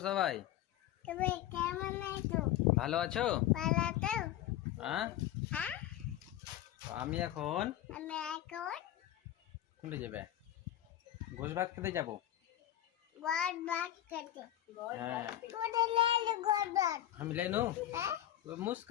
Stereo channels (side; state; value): right; quieter; 12.9 dB